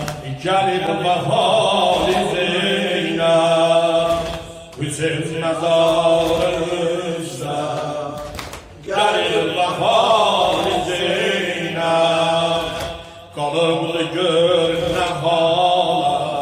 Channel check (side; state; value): both; identical; correlation 1.00